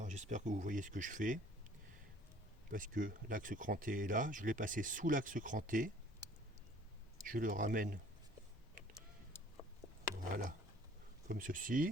j'espère que vous voyez ce que je fais, parce que l'axe cranté est là, je l'ai passé sous l'axe cranté, je le ramène, voilà, comme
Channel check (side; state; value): both; normal; correlation 0.55